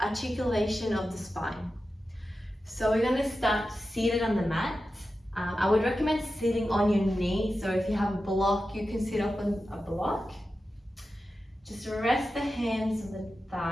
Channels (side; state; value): both; normal; correlation 0.92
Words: articulation of the spine. So we're going to start seated on the mat. I would recommend sitting on your knee, so if you have a block you can sit up on a block. Just rest the hands on the